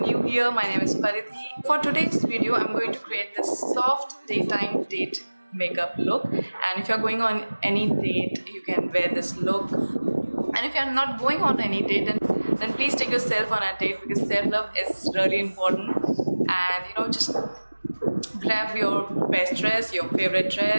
here, my name is Paridhi. For today's video, I'm going to create this soft daytime date makeup look, and if you're going on any date, you can wear this look. And if you're not going on any date, then please take yourself on a date, because self-love is really important. And just grab your best dress, your favorite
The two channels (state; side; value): inverted; both; correlation -1.00